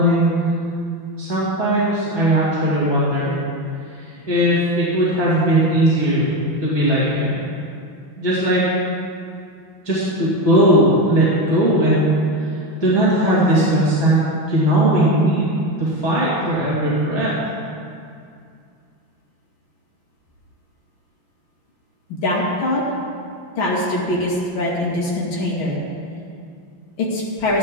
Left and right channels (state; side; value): late; right; 5.9 ms